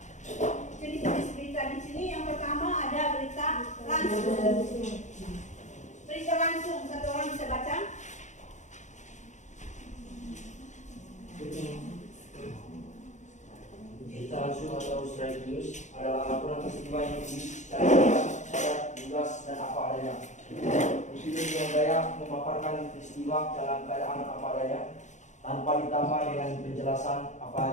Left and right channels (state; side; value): late; right; 0.35 ms